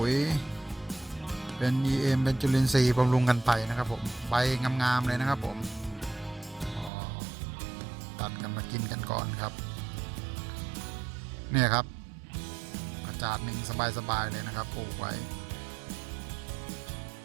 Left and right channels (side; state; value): left; drops out; at 6.9 s